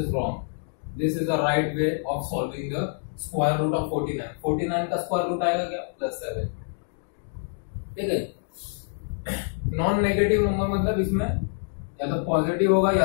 wrong. This is the right way of solving the square root of 49। 49 का स्क्वायर रूट आएगा क्या? +7। ठीक है, नॉन नेगेटिव नंबर मतलब इसमें या तो पॉजिटिव होगा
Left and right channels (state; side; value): silent; right; digital silence